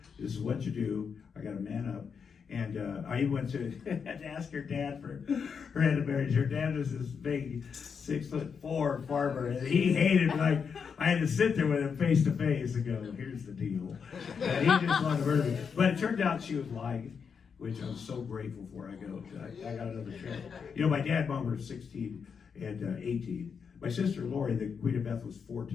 This is what you do. I got to man up. And I even went to had to ask her dad for her hand of marriage. Her dad was this big 6'4" farmer, and he hated me. Like I had to sit there with him face to face and go, "Here's the deal." And he just wanted to murder me. But it turned out she was lying, which I was so grateful for. I got another show. You know, my dad and mom were 16 and 18. My sister Lori, the Queen of Beth, was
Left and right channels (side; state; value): right; quieter; 6.3 dB